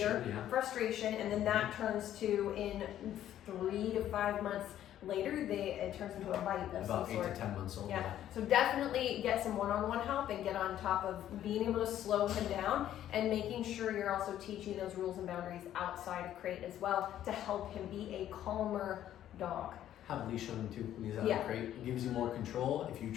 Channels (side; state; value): right; quieter; 11.6 dB